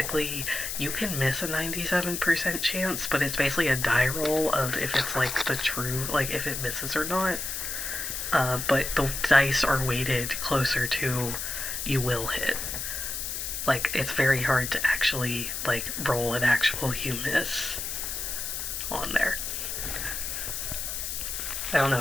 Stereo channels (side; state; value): left; noise; hiss, 4 dB below the sound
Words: you can miss a 97% chance, but it's basically a die roll of if it's like the true, like if it misses or not. But the dice are weighted closer to you will hit. Like, it's very hard to actually, like, roll an actual you miss on there. I don't know